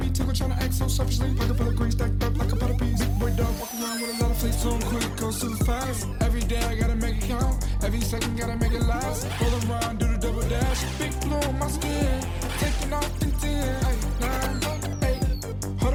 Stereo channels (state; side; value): identical; both; correlation 1.00